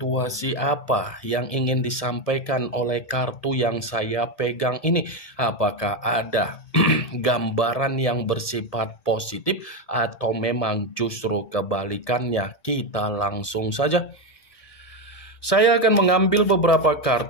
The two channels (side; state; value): right; late; 1.7 ms